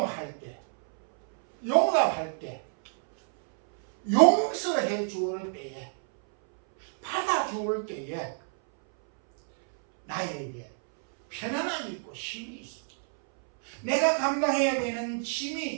때, 용납할 때, 용서해 주을 때에, 받아주을 때에 나에게 편안함이 있고 쉼이 있습니다. 내가 감당해야 되는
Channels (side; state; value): left; silent; 59 dB below the other